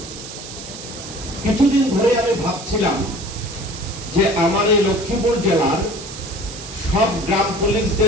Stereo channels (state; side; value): noise; right; hiss, 12 dB below the sound